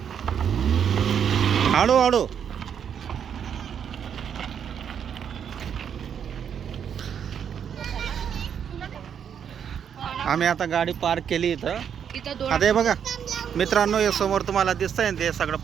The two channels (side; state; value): left; quieter; 8.1 dB